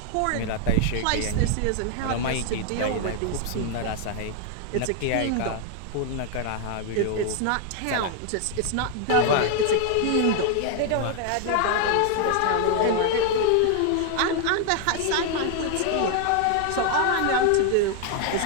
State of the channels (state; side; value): different; both; correlation 0.00